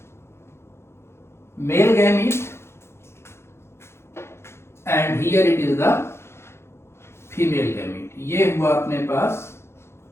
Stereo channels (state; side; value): late; right; 0.12 ms